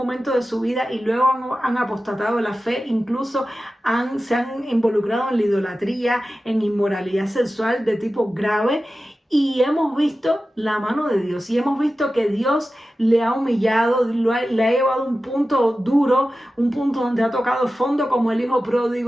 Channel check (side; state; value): both; normal; correlation 0.94